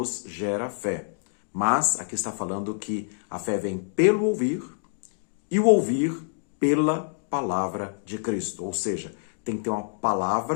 gera fé, mas aqui está falando que a fé vem pelo ouvir e o ouvir pela palavra de Cristo. Ou seja, tem que ter uma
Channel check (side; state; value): right; silent; digital silence